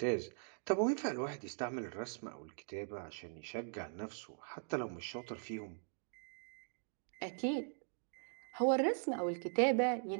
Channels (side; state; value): left; silent; digital silence